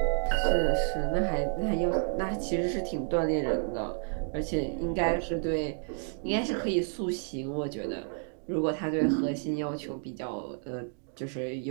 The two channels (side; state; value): left; silent; 55 dB below the other